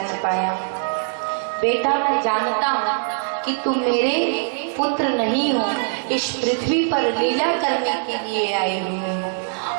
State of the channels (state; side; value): silent; left; 63 dB below the other